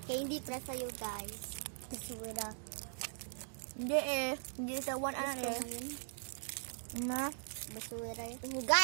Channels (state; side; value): silent; left; digital silence